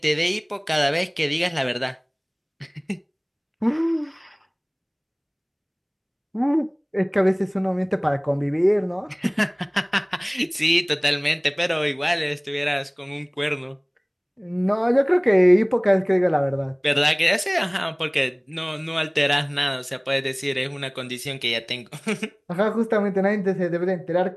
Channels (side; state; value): both; identical; correlation 1.00